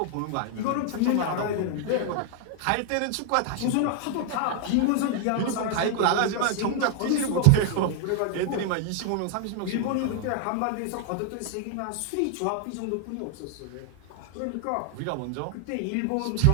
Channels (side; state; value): both; different; correlation 0.00